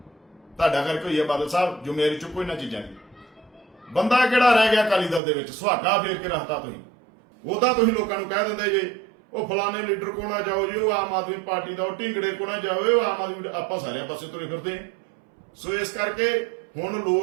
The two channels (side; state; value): left; drops out; at 5.2 s